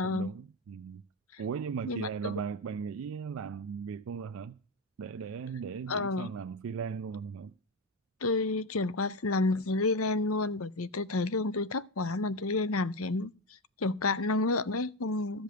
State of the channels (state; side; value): normal; both; correlation 0.15